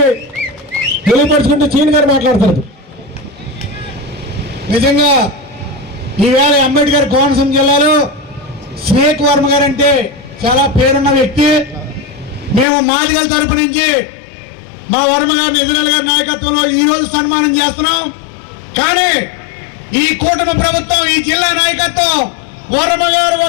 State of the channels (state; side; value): drops out; right; at 12.7 s